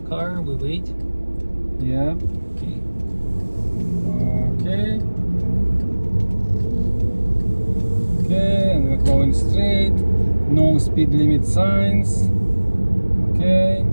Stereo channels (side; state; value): both; inverted; correlation -1.00